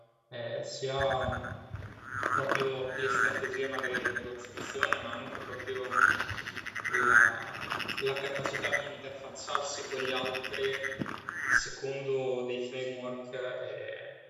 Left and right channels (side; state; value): both; identical; correlation 1.00